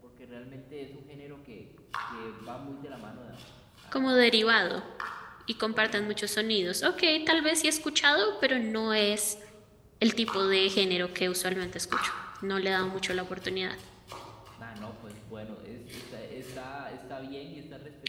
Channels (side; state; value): both; identical; correlation 1.00